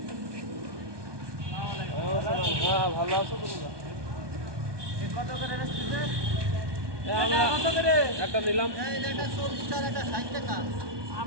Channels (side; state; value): left; late; 1.2 ms